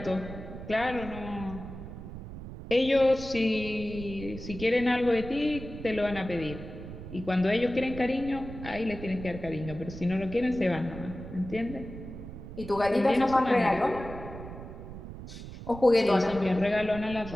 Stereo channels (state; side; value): noise; right; rumble, 11 dB below the sound